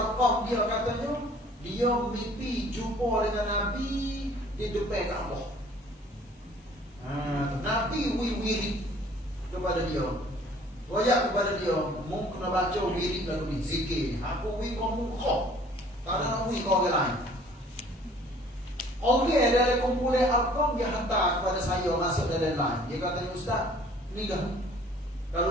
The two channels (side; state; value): both; normal; correlation 0.54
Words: dia katanya dia mimpi jumpa dengan Nabi di depan Kaabah. Nabi wirid kepada dia. Wayak kepada dia, mu kena baca wirid lalu ni, zikir. Aku kamu kau. Tak ada nak kau orang lain. Orang dari kumpulan Arqam dia hantar kepada saya masuk dalam line. Dia kata, Ustaz, ni dah.